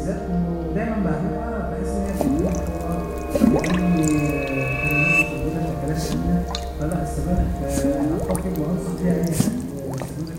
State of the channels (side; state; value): both; identical; correlation 1.00